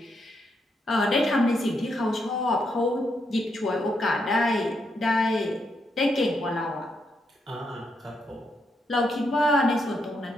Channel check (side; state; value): both; normal; correlation 0.79